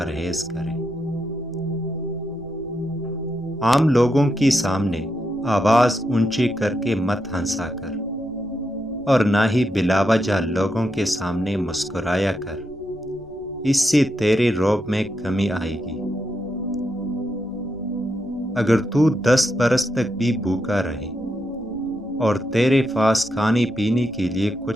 کریں۔ عام لوگوں کے سامنے آواز اونچی کر کے مت ہنسا کر، اور نہ ہی بلا وجہ لوگوں کے سامنے مسکرایا کر، اس سے تیرے رعب میں کمی آئے گی۔ اگر تو 10 برس تک بھی بھوکا رہے اور تیرے پاس کھانے پینے کے لیے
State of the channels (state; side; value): noise; right; rumble, 24 dB below the sound